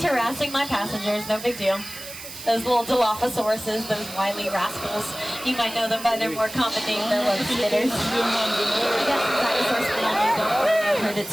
harassing my passengers, no big deal. Those little Dilophosauruses, those wily rascals. You might know them by their more common name, they're web spitters. I got some dinosaur spit on you, don't worry, I've heard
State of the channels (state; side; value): noise; right; hiss, 13 dB below the sound